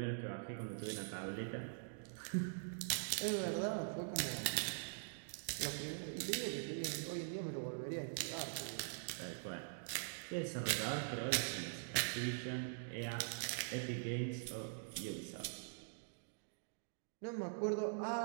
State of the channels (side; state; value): left; silent; digital silence